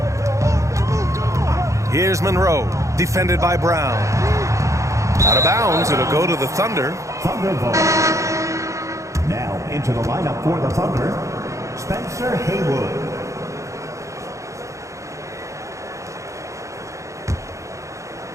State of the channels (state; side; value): late; left; 0.15 ms